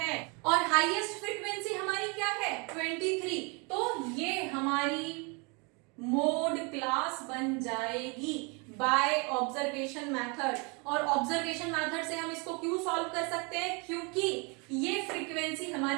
और हाईएस्ट फ्रीक्वेंसी हमारी क्या है? 23. तो ये हमारी मोड क्लास बन जाएगी बाय ऑब्जर्वेशन मेथड. और ऑब्जर्वेशन मेथड से हम इसको क्यों सॉल्व कर सकते हैं? क्योंकि ये फ्रीक्वेंसी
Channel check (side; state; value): left; quieter; 31.6 dB